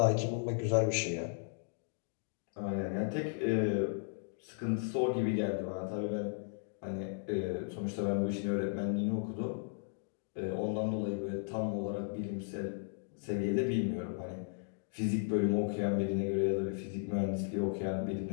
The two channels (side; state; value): right; silent; digital silence